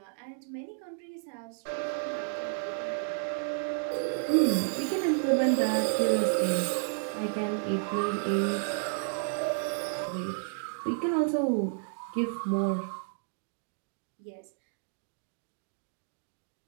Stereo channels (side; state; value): left; silent; digital silence